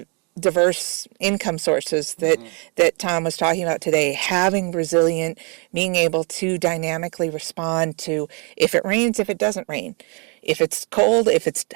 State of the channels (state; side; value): quieter; left; 34.2 dB